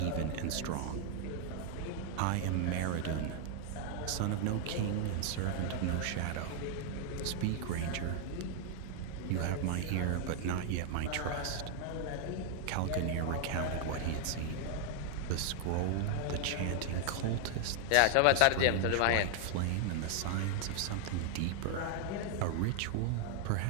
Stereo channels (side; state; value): both; different; correlation 0.00